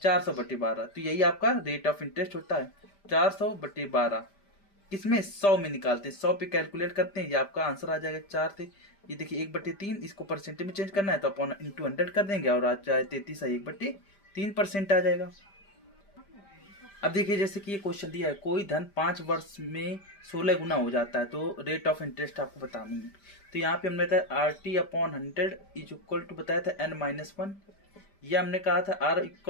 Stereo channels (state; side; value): late; right; 5.0 ms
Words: 400/12। तो यही आपका रेट ऑफ इंटरेस्ट होता है, 400/12। किसमें, 100 में निकालते हैं, 100 पे कैलकुलेट करते हैं, ये आपका आंसर आ जाएगा 4 से। ये देखिए 1/3, इसको परसेंटेज में चेंज करना है तो अपॉन इंटू 100 कर देंगे और आ जाए 33 है 1/3% आ जाएगा। अब देखिए जैसे कि ये क्वेश्चन दिया है, कोई धन 5 वर्ष में 16 गुना हो जाता है, तो रेट ऑफ इंटरेस्ट आपको बतानी है। तो यहाँ पे हमने बताया RT/100 इज इक्वल टू बताया था n-1, या हमने कहा था R